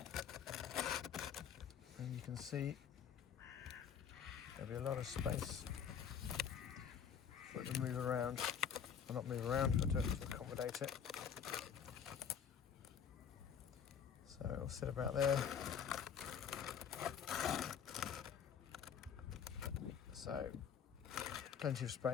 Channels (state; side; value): quieter; right; 7.7 dB